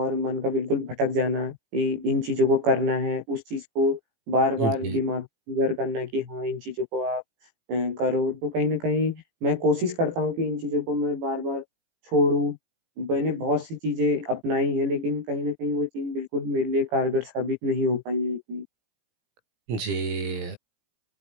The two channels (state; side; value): late; left; 18 ms